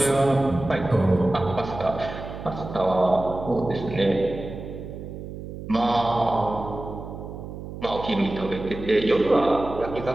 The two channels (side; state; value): right; noise; hum, 10 dB below the sound